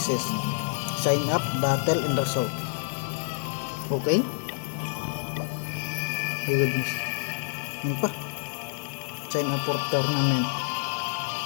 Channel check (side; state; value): right; silent; 59 dB below the other